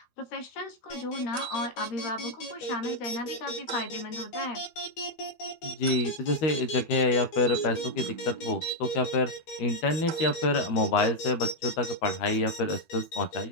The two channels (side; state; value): right; late; 12 ms